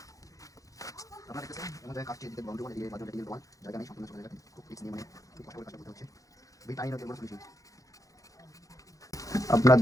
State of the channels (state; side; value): late; right; 0.16 ms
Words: আপনারা দেখতেছেন আমাদের কাজটি দিতে বাউন্ডারি করে দিয়ে বাজারে দিয়ে বল জায়গা নেই সম্পূর্ণ চলে যাবে খুব রিস্ক নিয়ে মানে খুব কষ্ট করে কাজ করতে হচ্ছে ভিটামিন ওকে বড় সলিউশন আপনারা